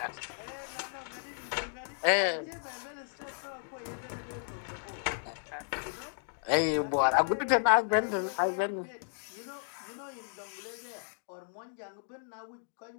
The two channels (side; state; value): right; silent; digital silence